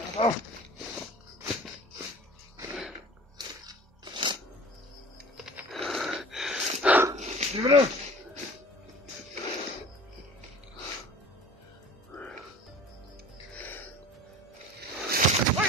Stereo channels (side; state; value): both; normal; correlation 0.42